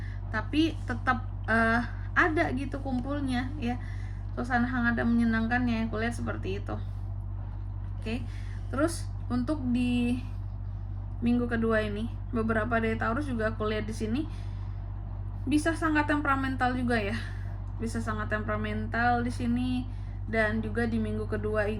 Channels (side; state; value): both; identical; correlation 1.00